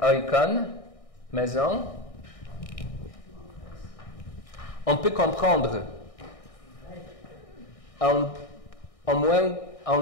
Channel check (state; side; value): late; right; 1.6 ms